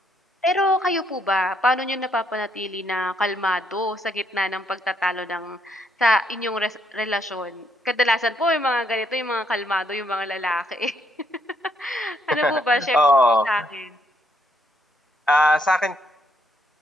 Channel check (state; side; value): normal; both; correlation 0.73